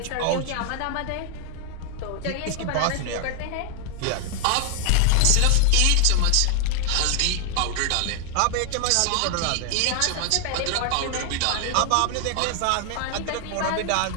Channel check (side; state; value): both; different; correlation 0.00